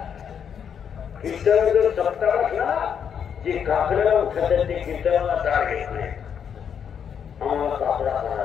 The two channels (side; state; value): right; quieter; 7.8 dB